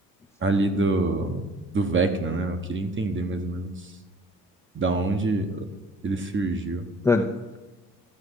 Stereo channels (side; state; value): both; normal; correlation 0.54